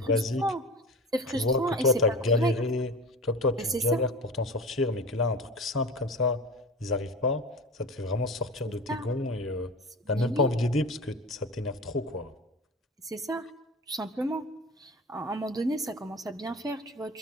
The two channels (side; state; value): both; normal; correlation 0.32